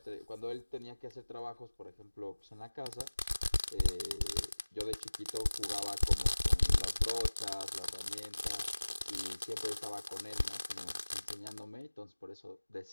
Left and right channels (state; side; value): inverted; both; correlation -1.00